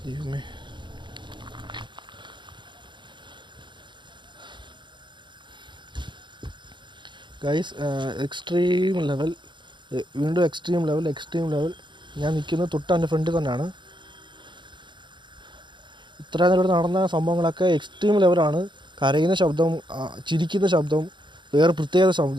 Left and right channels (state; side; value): late; left; 0.23 ms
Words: ദൈവമേ. ഗൈസ് എക്സ്ട്രീം ലെവൽ, വീണ്ടും എക്സ്ട്രീം ലെവൽ. ഞാൻ നിൽക്കുന്നത് തൊട്ട് എൻ്റെ ഫ്രണ്ടിൽ തന്നെയാണ്. ഇത്ര നേരം നടന്ന സംഭവങ്ങളൊക്കെ എക്സ്ട്രീം ലെവലാണ്. കരയുന്ന ശബ്ദം, ചിരിക്കുന്ന ശബ്ദം, വേറെ പ്രത്യേക